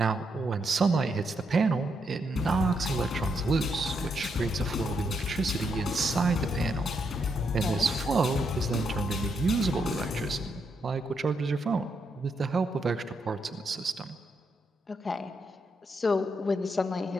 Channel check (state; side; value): normal; both; correlation 0.79